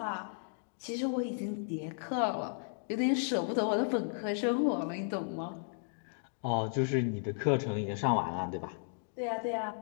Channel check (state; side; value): silent; right; digital silence